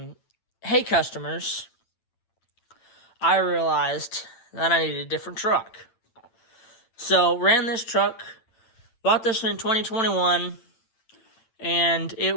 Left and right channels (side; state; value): right; late; 8.9 ms